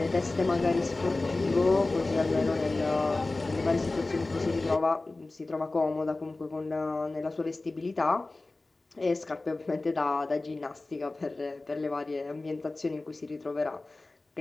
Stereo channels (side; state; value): right; quieter; 3.2 dB